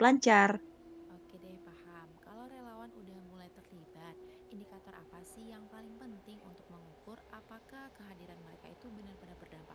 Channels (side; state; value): both; identical; correlation 1.00